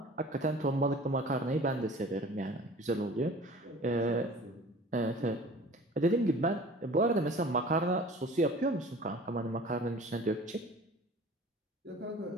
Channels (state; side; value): normal; both; correlation 0.44